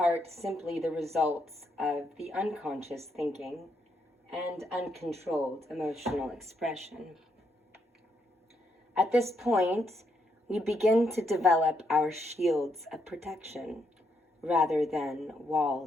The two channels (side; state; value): both; normal; correlation 0.77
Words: simply the results of the unconscious thinking and uncontrolled emotional expression. At this point, we begin to develop our shields of protection rather than